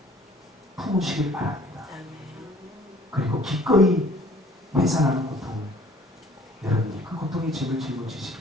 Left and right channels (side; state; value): both; normal; correlation 0.54